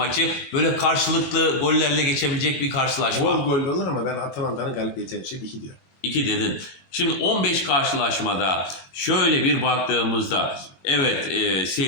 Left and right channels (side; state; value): right; late; 22 ms